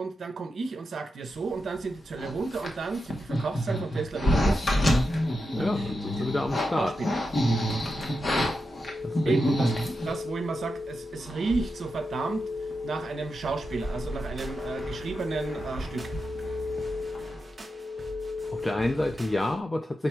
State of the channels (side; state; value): both; normal; correlation 0.88